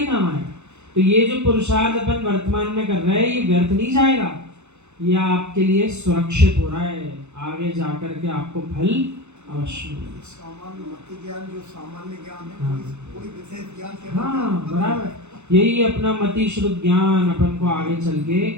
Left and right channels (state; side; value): late; left; 0.82 ms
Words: काम आएगा। तो ये जो पुरुषार्थ अपन वर्तमान में कर रहे हैं ये व्यर्थ नहीं जाएगा, यह आपके लिए सुरक्षित हो रहा है, आगे जाकर के आपको फल अवश्य मिलेगा। सामान्य मति ज्ञान जो सामान्य ज्ञान है, हाँ। कोई विशेष ज्ञान के हाँ बराबर, यही अपना मति शुद्ध ज्ञान अपन को आगे चल के